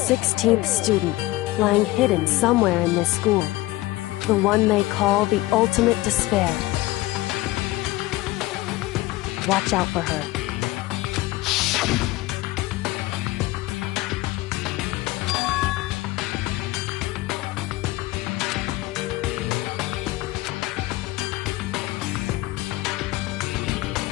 student, lying hidden somewhere in this school. The one they call the ultimate despair. Watch out for her.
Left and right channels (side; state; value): right; quieter; 18.6 dB